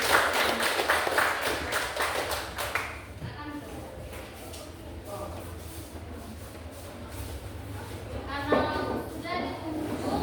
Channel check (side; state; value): both; identical; correlation 1.00